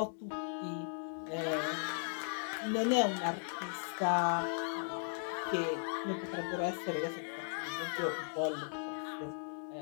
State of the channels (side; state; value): right; silent; digital silence